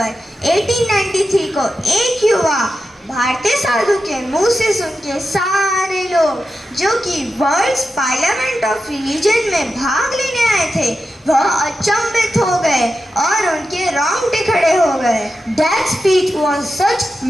1893 को एक युवा भारतीय साधु के मुंह से सुन के सारे लोग जो कि वर्ल्ड्स पार्लियामेंट ऑफ रिलीजन में भाग लेने आए थे वह अचंभित हो गए और उनके रोंगटे खड़े हो गए. That speech was such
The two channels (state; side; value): normal; both; correlation 0.91